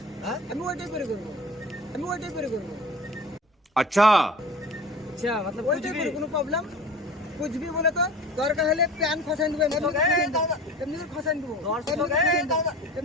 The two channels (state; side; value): normal; both; correlation 0.38